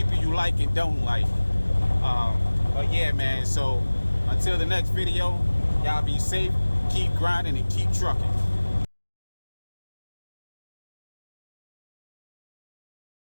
you like and don't like. But yeah, man, so until the next video, y'all be safe, keep grinding, and keep trucking.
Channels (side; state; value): both; inverted; correlation -1.00